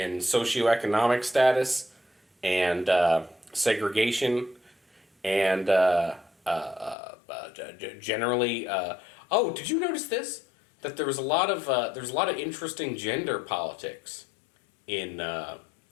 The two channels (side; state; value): right; drops out; at 7.0 s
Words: socioeconomic status and segregation and generally. Oh, did you notice this? That there's a lot of interesting gender politics in